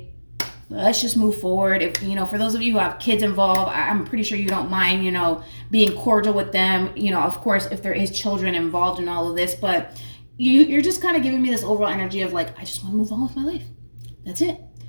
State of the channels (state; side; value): inverted; both; correlation -1.00